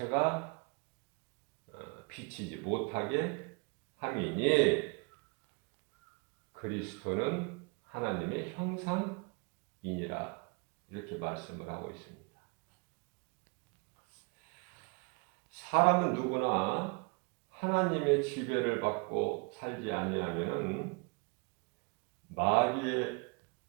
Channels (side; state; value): left; quieter; 31.7 dB